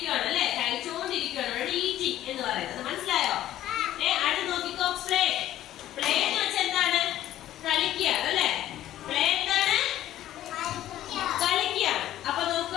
അല്ലെ? കഴിച്ചോണ്ടിരിക്കുകയാണ്, ഈറ്റിംഗ് എന്ന് പറയുന്നത്. മനസ്സിലായോ? അടുത്ത് നോക്കിക്കോ, പ്ലേ. പ്ലേ എന്ന് വെച്ചാൽ എന്താണ്? കളിക്കുകയാണ് അല്ലെ? പ്ലേ എന്താണ്? കളിക്കുകയാണ്. അപ്പൊ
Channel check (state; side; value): quieter; right; 13.1 dB